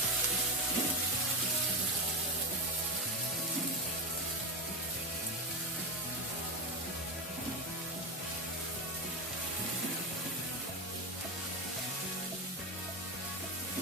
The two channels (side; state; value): both; normal; correlation 0.14